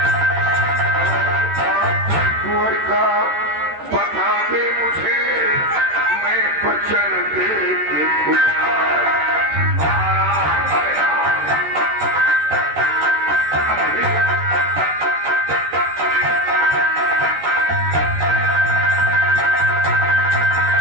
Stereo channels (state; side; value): late; left; 13 ms